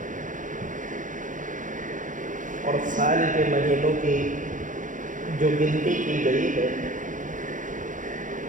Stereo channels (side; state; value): left; late; 0.37 ms